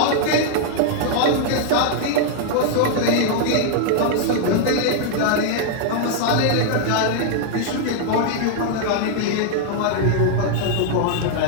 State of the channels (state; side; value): different; both; correlation 0.00